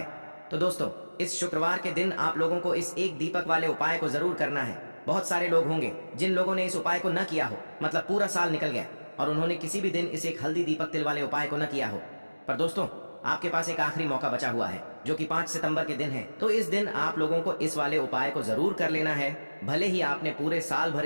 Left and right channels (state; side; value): inverted; both; correlation -1.00